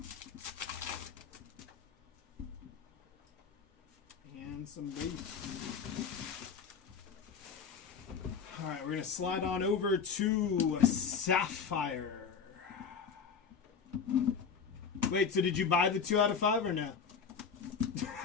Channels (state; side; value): quieter; right; 6.2 dB